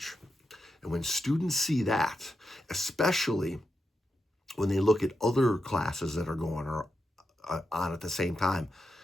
And when students see that, especially when they look at other classes that are going on at the same time,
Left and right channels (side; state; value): both; normal; correlation 0.87